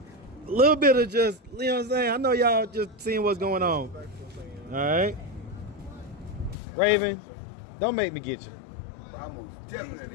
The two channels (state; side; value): drops out; right; at 6.6 s